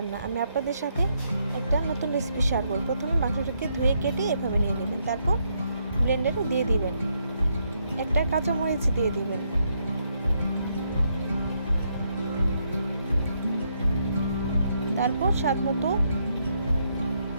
আমি আপনাদের সাথে একটা নতুন রেসিপি শেয়ার করব। প্রথমে মাংসটাকে ধুয়ে কেটে এভাবে নিয়ে নেবেন, তারপর ব্লেন্ডারে দিয়ে দিবেন, একটা কাঁচামরিচ দিয়ে দিবেন, তারপর স্বাদ মতো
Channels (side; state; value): both; inverted; correlation -0.76